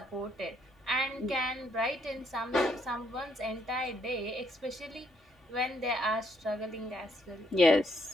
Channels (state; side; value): normal; both; correlation 0.72